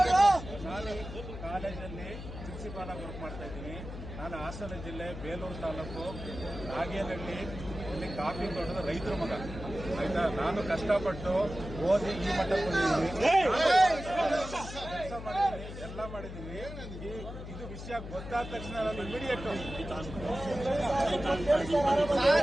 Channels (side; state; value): left; noise; hum, 10 dB below the sound